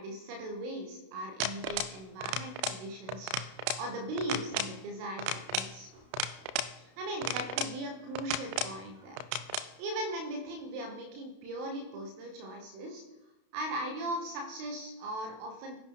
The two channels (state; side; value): late; left; 32 ms